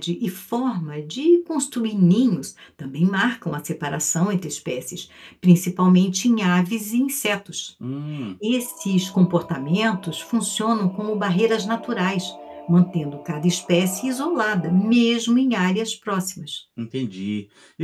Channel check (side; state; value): both; identical; correlation 1.00